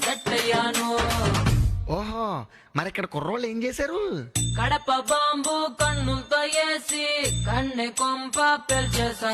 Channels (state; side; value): identical; both; correlation 1.00